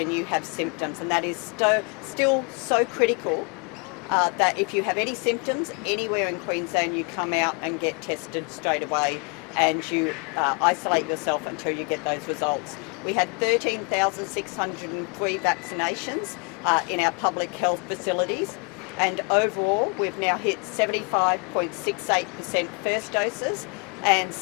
you have symptoms. And that is still so critical that if you have any symptoms anywhere in Queensland, you come out and get tested straight away and you isolate yourself until you get those results. We had 13,603 vaccinations in our public health facilities, and overall we've now hit 75.68% first doses and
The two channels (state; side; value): quieter; right; 34.6 dB